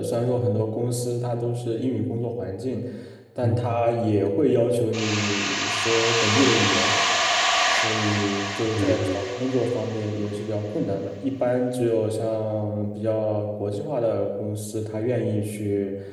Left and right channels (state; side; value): identical; both; correlation 1.00